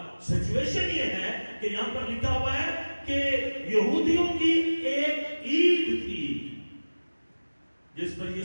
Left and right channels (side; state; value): both; inverted; correlation -1.00